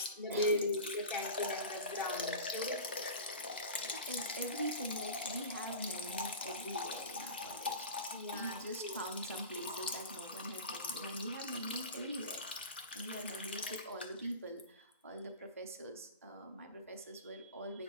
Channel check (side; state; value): both; inverted; correlation -0.32